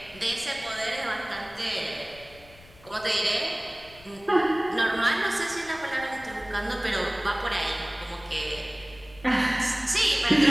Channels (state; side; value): noise; left; rumble, 23 dB below the sound